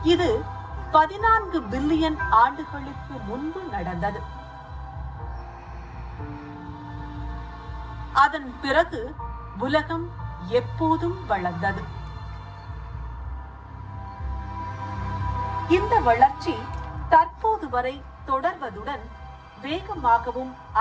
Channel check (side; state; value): both; identical; correlation 1.00